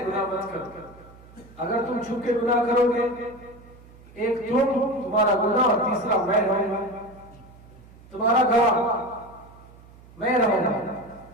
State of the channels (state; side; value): noise; right; hum, 22 dB below the sound